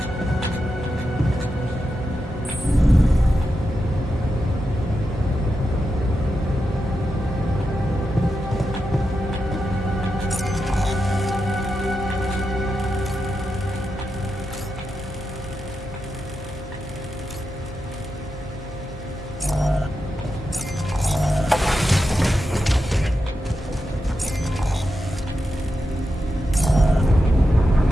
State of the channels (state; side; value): normal; both; correlation 0.88